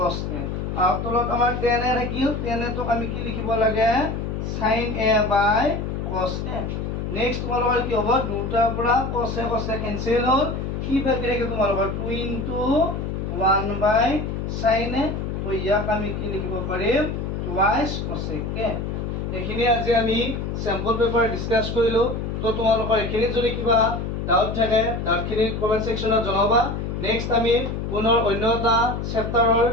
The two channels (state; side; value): noise; left; hum, 4 dB below the sound